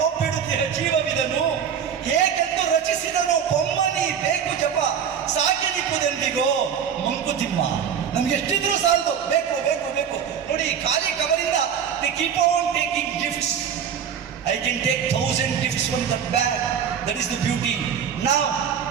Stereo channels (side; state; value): left; quieter; 7.9 dB